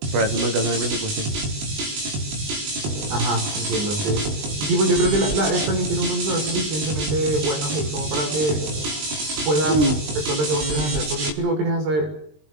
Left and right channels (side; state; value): left; late; 20 ms